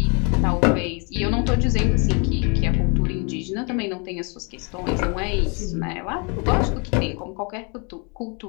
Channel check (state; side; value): quieter; right; 33.9 dB